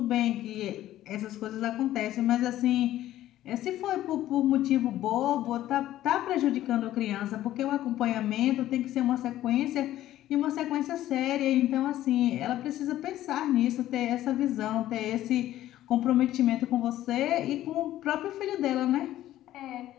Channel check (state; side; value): quieter; right; 13.7 dB